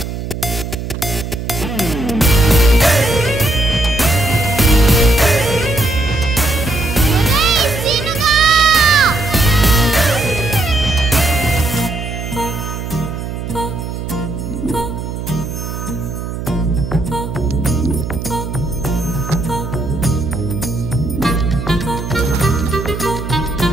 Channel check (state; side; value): noise; right; hum, 6 dB below the sound